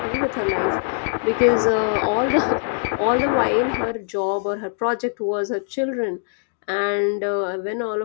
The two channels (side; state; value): right; silent; digital silence